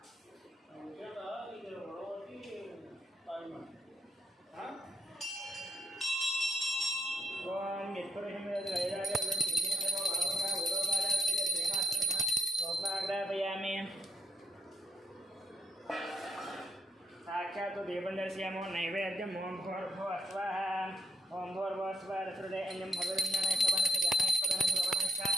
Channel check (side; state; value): both; normal; correlation 0.76